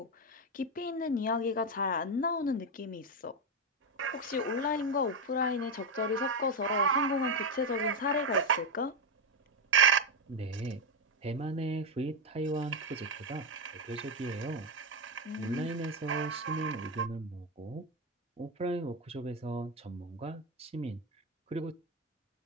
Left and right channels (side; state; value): both; normal; correlation 0.06